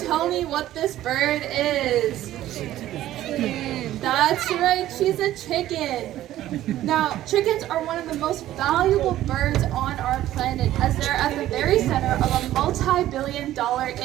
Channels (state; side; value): quieter; left; 13.7 dB